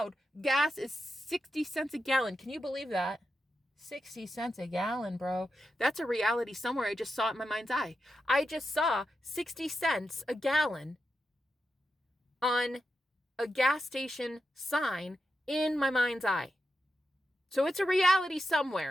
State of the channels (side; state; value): both; normal; correlation 0.88